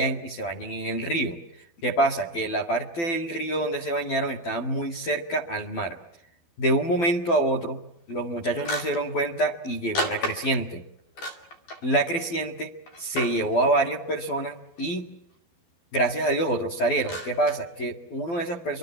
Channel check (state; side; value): late; right; 12 ms